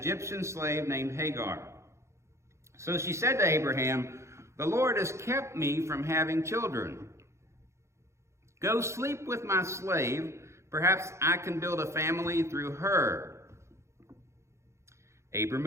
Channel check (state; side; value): late; left; 0.14 ms